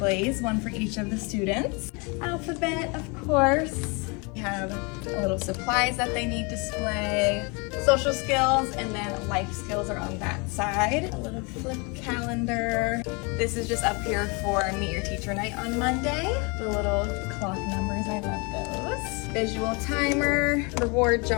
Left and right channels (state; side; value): quieter; right; 30.5 dB